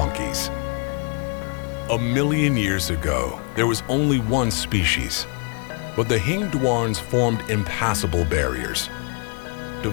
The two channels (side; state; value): right; quieter; 36.4 dB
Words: A million years ago, there was only one species, but the Hingduans formed impassable barriers,